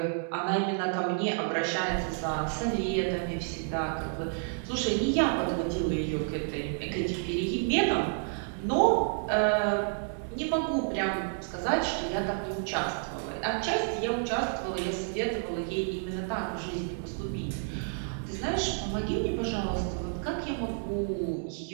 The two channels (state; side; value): silent; left; digital silence